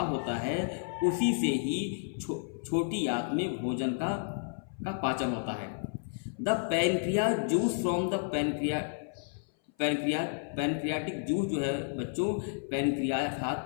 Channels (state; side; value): silent; right; 57 dB below the other